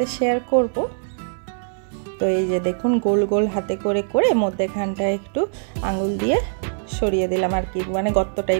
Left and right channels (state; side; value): silent; left; digital silence